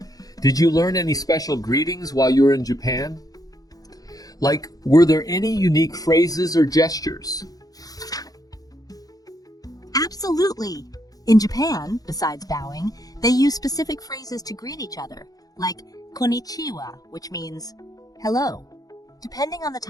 Did you learn any special greetings while you were in Japan? Like, were there any unique phrases or gestures? Absolutely. In Japan, besides bowing, they use specific phrases to greet each other, like konnichiwa, which means hello. Depending on the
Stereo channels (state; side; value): late; right; 0.18 ms